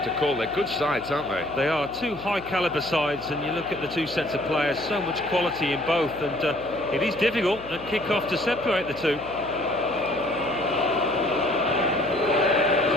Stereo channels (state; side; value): noise; left; hum, 16 dB below the sound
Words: to call. They're good sides, aren't they? They are two high-caliber sides, and you look at the two sets of players, so much quality in both, and it is difficult at kick-off to separate the two. It's